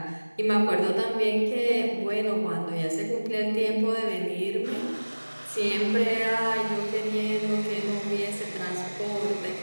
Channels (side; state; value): both; inverted; correlation -1.00